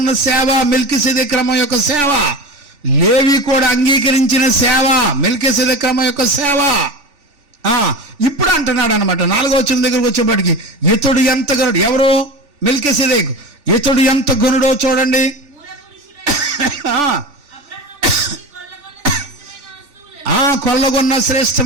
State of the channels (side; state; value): left; late; 3.4 ms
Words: సేవ మెల్కీసెదెకు క్రమం యొక్క సేవ. లేవి కూడా అంగీకరించిన సేవ మెల్కీసెదెకు క్రమం యొక్క సేవ. ఇప్పుడు అంటున్నాడు అనమాట 4వ వచనం దగ్గరకు వచ్చేప్పటికి, ఇతడు ఎంత ఘనుడు. ఎవరు? మెల్కీసెదెకు. ఇతడు ఎంత ఘనుడో చూడండి. కొల్లగొన్న